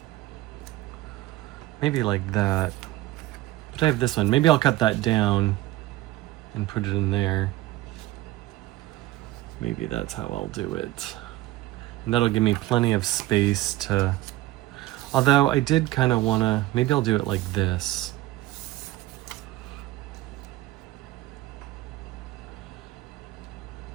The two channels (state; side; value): quieter; left; 16.5 dB